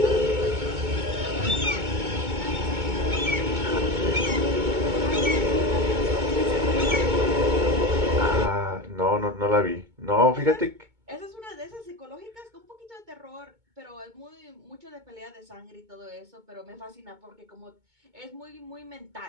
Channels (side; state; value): left; late; 2.2 ms